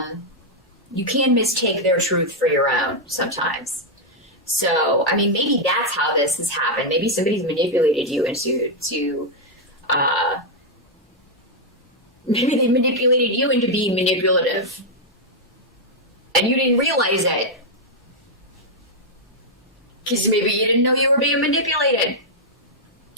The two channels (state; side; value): normal; both; correlation -0.02